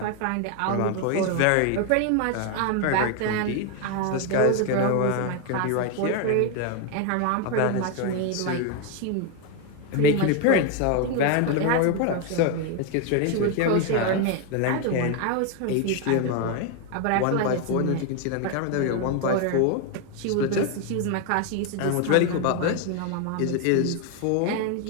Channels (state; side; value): different; both; correlation 0.01